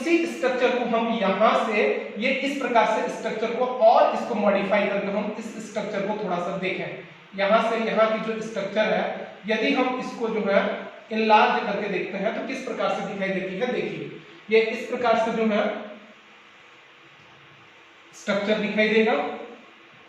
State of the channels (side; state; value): both; identical; correlation 1.00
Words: स्ट्रक्चर को हम यहां से ये इस प्रकार से स्ट्रक्चर को और इसको मॉडिफाई करके हम इस स्ट्रक्चर को थोड़ा सा देखें। यहां से यहां की जो स्ट्रक्चर है यदि हम इसको इनलार्ज करके देखते हैं तो किस प्रकार से दिखाई देती है। देखिए, ये इस प्रकार से स्ट्रक्चर दिखाई देगा।